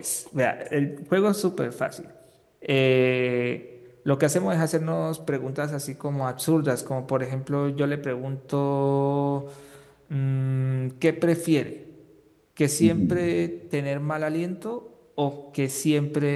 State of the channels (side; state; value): both; identical; correlation 1.00